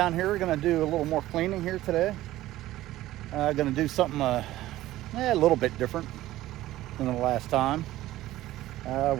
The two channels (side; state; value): left; quieter; 15.5 dB